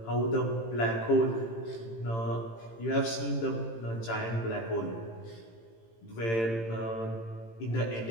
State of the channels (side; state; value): right; late; 18 ms